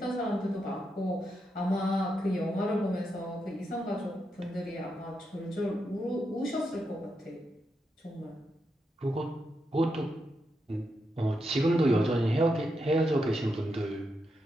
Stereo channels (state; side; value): normal; both; correlation 0.84